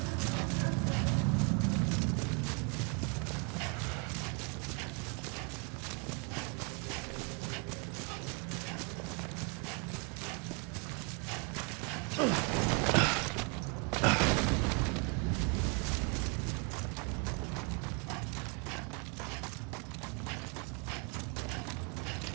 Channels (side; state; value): left; quieter; 33.9 dB